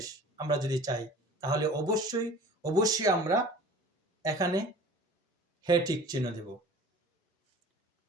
আমরা যদি চাই, তাহলে অবশ্যই অবশ্যই আমরা এখানে হ্যাঁ টিক চিহ্ন দেব।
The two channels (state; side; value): normal; both; correlation 0.44